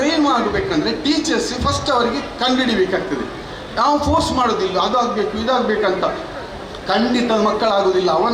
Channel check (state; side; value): identical; both; correlation 1.00